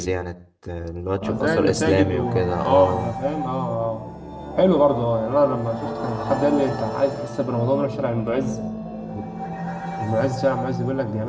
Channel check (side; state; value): both; identical; correlation 1.00